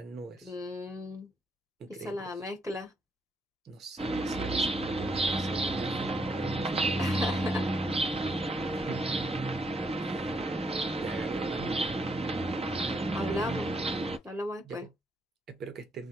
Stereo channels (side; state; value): both; normal; correlation 0.74